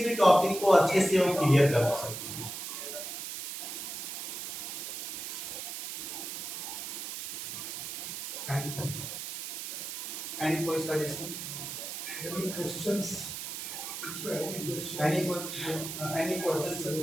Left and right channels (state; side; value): noise; right; hiss, 6 dB below the sound